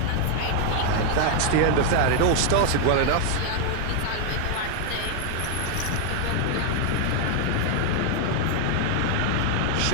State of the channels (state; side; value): different; both; correlation 0.00